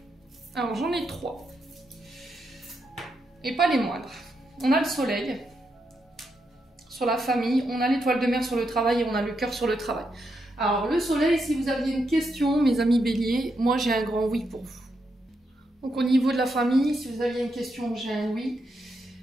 Alors j'en ai 3. Et pas les moindres. On a le soleil sur la famille, on a l'étoile de mer sur le travail et on a le cœur sur le travail. Alors le soleil, si vous aviez une question, mes amis béliers, moi j'ai un grand oui pour vous. Donc au niveau de la famille, si vous aviez une question, j'ai un oui.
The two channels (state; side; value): normal; both; correlation 0.82